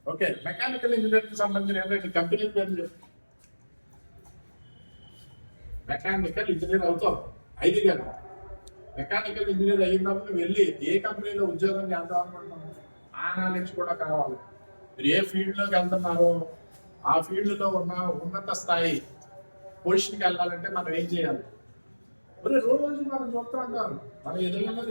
ఓకే, మెకానికల్ ఇంజనీర్కి సంబంధించిన ఏంటంటే కంపెనీ పేరు. మెకానికల్ ఇంజనీర్ అవుతావు 5 గంటలు. మెకానికల్ ఇంజనీర్ అయినప్పుడు వెళ్ళి ఏ కంపెనీలో ఉద్యోగం చేద్దాం అనుకుంటున్నాం ఆ నాలెడ్జ్ కూడా కావాలి. మీరు ఏ ఫీల్డ్ లోకి వెళ్తున్నారో ఆ ఫీల్డ్ లో ఉన్న ఉన్నత స్థాయి పొజిషన్కి వెళ్ళాలంటే మనం ఏం చేయాలి? మరి రోజు మనం చూస్తూ ఉంటాం, మనం ఎదురుగా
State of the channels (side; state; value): both; inverted; correlation -1.00